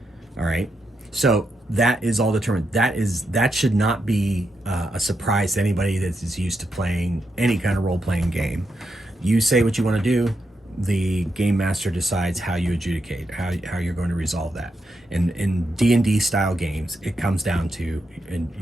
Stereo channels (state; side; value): normal; both; correlation 0.83